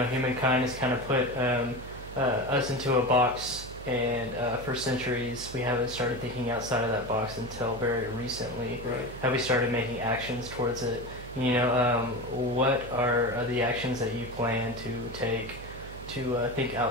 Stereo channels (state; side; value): noise; right; hum, 13 dB below the sound